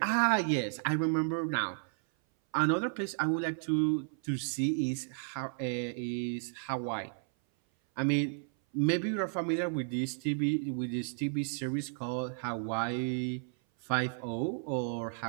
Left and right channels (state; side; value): silent; left; 56 dB below the other